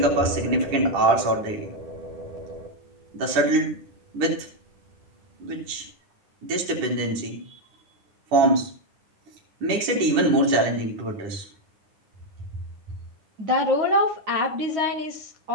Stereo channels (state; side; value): late; left; 10 ms